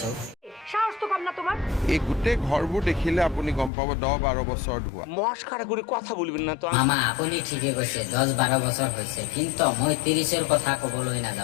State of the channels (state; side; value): drops out; right; at 3.7 s